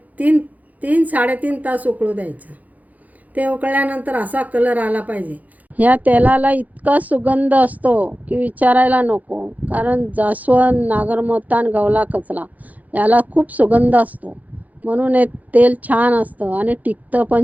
3-3.5 तास उकळू द्यायचं. ते उकळल्यानंतर असा कलर आला पाहिजे. ह्या तेलाला इतका सुगंध असतो की विचारायला नको, कारण जास्वंद, नागरमोथा आणि गवला कचरा याला खूप सुगंध असतो, म्हणून हे तेल छान असतं आणि टिकतं पण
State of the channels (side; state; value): left; late; 0.079 ms